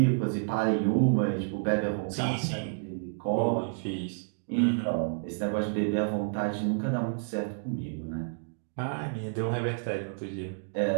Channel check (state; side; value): silent; left; digital silence